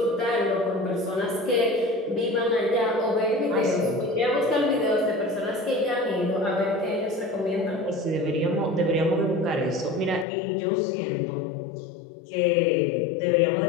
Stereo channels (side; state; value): right; drops out; at 10.2 s